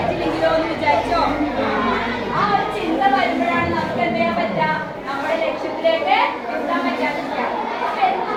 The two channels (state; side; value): identical; both; correlation 1.00